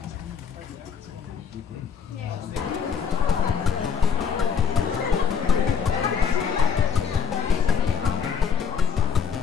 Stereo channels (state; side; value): quieter; right; 6.7 dB